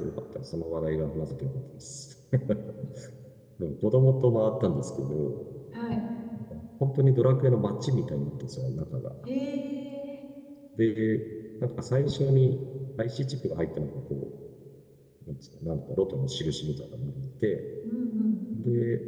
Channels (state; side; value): identical; both; correlation 1.00